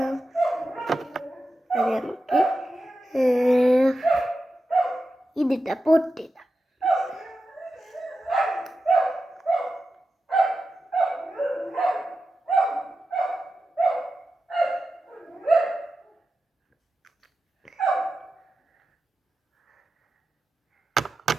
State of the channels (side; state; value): both; normal; correlation 0.91